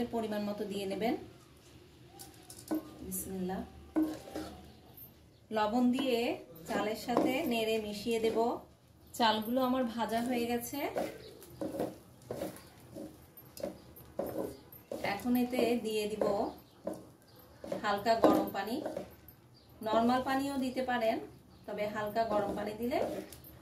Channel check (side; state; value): both; identical; correlation 1.00